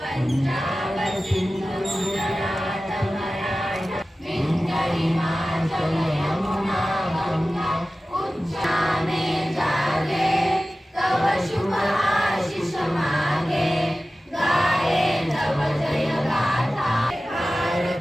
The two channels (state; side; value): normal; both; correlation 0.96